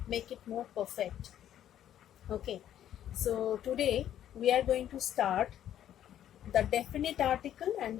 make it more perfect. Okay, so today we are going to start the definite article and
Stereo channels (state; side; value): quieter; right; 11.1 dB